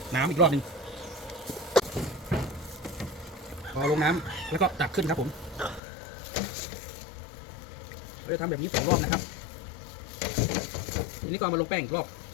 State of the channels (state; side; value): drops out; right; at 5.8 s